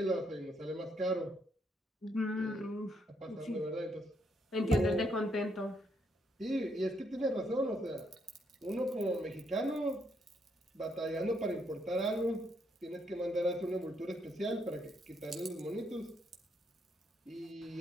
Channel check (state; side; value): normal; both; correlation 0.74